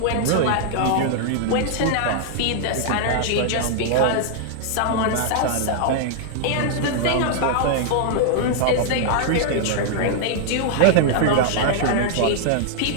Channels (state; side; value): different; both; correlation -0.01